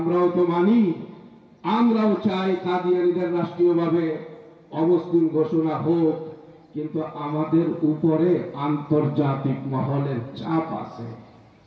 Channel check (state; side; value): identical; both; correlation 1.00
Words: তো মানি, আমরাও চাই কাদিয়ানীদের রাষ্ট্রীয়ভাবে অমুসলিম ঘোষণা হোক, কিন্তু আমাদের উপরে আন্তর্জাতিক মহলের চাপ আছে।